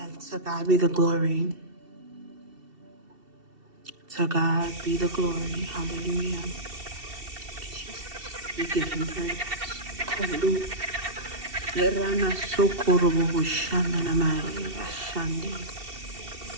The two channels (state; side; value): late; left; 2.7 ms